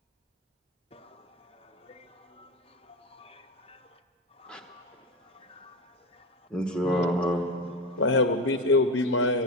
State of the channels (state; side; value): normal; both; correlation 0.19